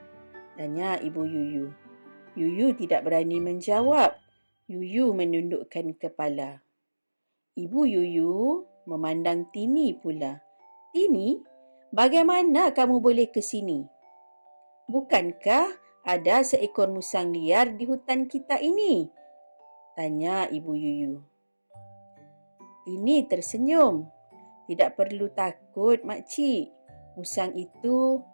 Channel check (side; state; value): both; inverted; correlation -1.00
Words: Tanya Ibu Yuyu. Yuyu tidak berani menjawab. Yuyu menundukkan kepala. Ibu Yuyu memandang Tini pula. Tini, bagaimana kamu boleh ke sini? Bukankah ada seekor musang liar di hutan kita ini? Tanya Ibu Yuyu. Tini tersenyum. Tidak perlu takut, makcik. Musang itu